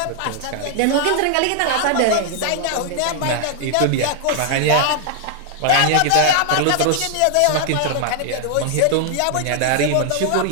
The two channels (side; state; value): both; different; correlation 0.00